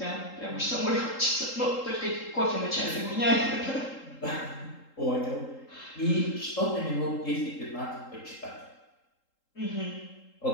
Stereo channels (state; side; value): late; right; 3.8 ms